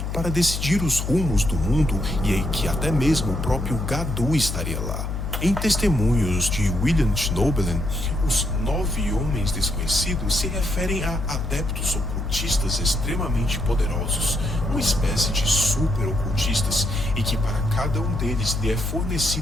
para decidir os rumos do mundo e que até mesmo o próprio Gadu estaria lá. Em testemunhos de William Schnoebelen, os 9 homens desconhecidos se referem a adeptos ocultistas extremamente poderosos, uma espécie de super-ocultistas, e que para cada um deles lhe é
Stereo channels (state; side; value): noise; left; hum, 3 dB below the sound